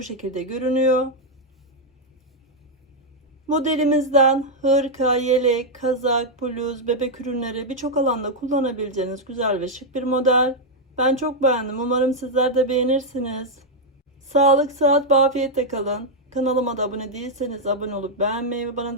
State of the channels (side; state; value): both; normal; correlation -0.01